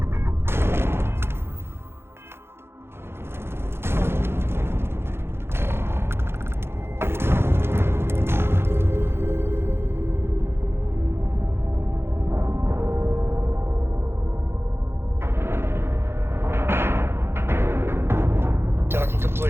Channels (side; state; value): left; late; 0.12 ms